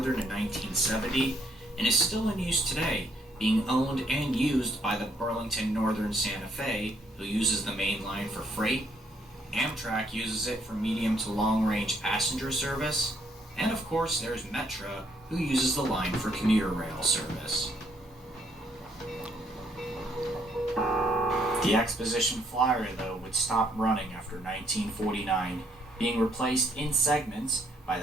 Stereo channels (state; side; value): normal; both; correlation 0.69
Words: in 1970, and is still in use today, being owned and used by the Burlington Northern Santa Fe, who uses the main line for freight. Amtrak uses it for medium to long-range passenger service, and of course there's Metra, who uses the line for commuter rail service. The Exposition Flyer, though, would stop running after 1949, being replaced in segments by